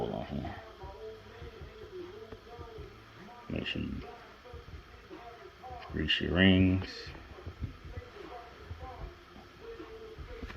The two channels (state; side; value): identical; both; correlation 1.00